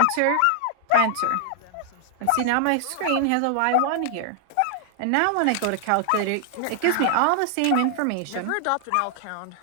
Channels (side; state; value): both; different; correlation 0.00